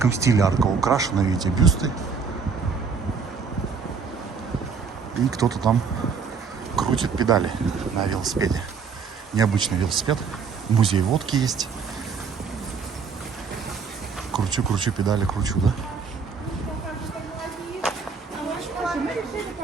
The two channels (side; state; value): left; quieter; 5.5 dB